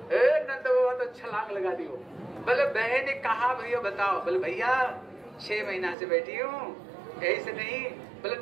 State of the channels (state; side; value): drops out; left; at 6.0 s